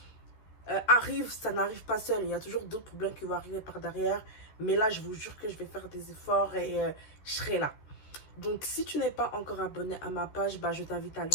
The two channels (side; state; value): right; late; 14 ms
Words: arrive, ça n'arrive pas seul. Il y a toujours d'autres problèmes qui vont arriver par derrière. Mais là, je vous jure que je vais faire des efforts et je serai là. Donc, si tu n'es pas encore abonné à ma page, je t'invite à le